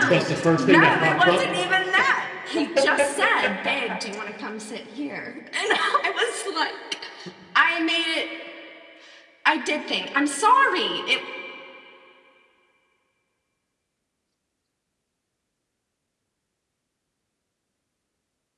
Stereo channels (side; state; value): both; identical; correlation 1.00